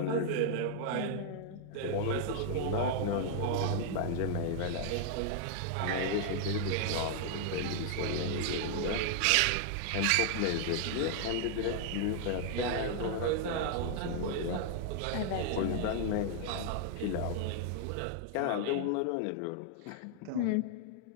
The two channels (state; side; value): different; both; correlation 0.00